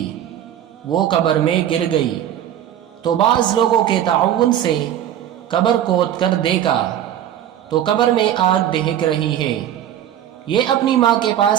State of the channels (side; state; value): left; quieter; 11.0 dB